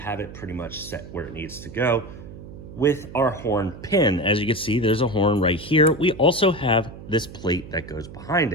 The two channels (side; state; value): right; noise; hum, 14 dB below the sound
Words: it pretty much set where it needs to go with our horn pin. As you can see, there's a horn right here. We also have this plate that goes behind